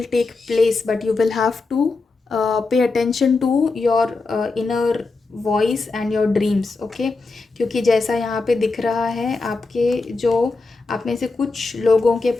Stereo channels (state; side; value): quieter; right; 3.8 dB